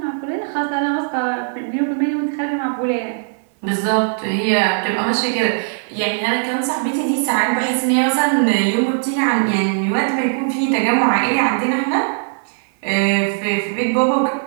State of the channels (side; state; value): left; silent; 58 dB below the other